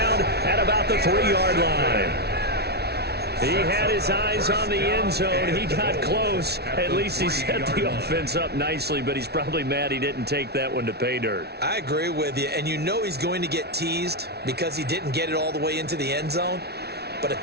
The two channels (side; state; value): left; late; 0.48 ms